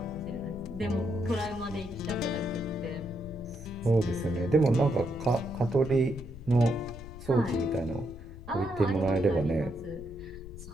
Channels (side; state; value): left; noise; rumble, 14 dB below the sound